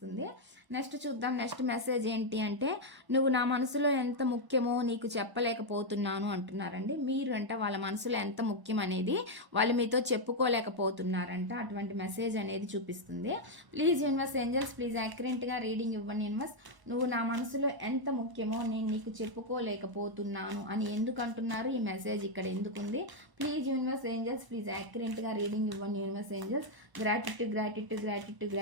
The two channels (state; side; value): late; left; 1.0 ms